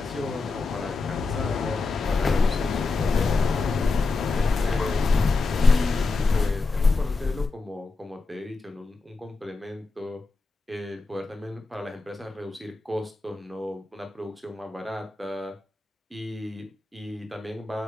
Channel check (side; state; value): right; quieter; 3.8 dB